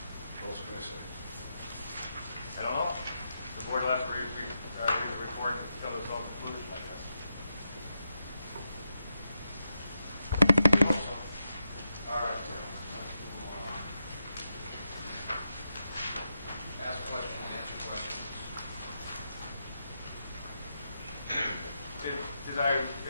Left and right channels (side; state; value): both; inverted; correlation -0.85